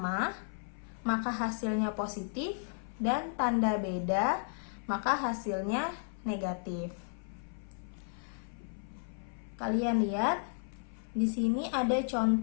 maka hasilnya positif dan tanda beda maka hasilnya negatif. Kalian lihat di sini ada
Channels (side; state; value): right; silent; 55 dB below the other